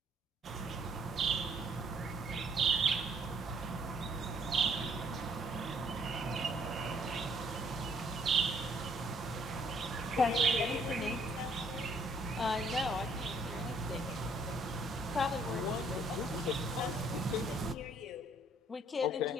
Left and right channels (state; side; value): normal; both; correlation 0.64